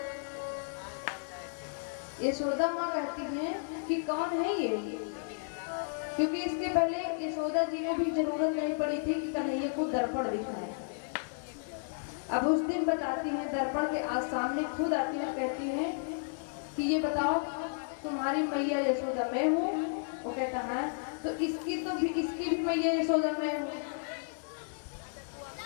यशोदा माँ कहती हैं कि कौन है ये, क्योंकि इसके पहले यशोदा जी को भी जरूरत नहीं पड़ी थी कि कन्हैया को दर्पण दिखाए। अब उस दिन बताती हैं, दर्पण के आज सामने खुद आती है, कहती हैं कि ये बताओ तुम्हारी मैया यशोदा मैं हूँ? वो कहता है तो इसकी भी मैया यशोदा मैं हूँ।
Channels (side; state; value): right; silent; 56 dB below the other